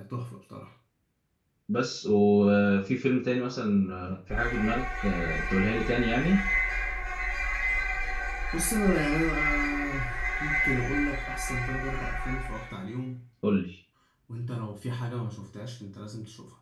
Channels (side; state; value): both; identical; correlation 1.00